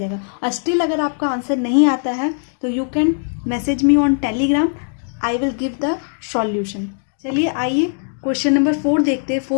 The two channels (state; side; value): silent; right; 60 dB below the other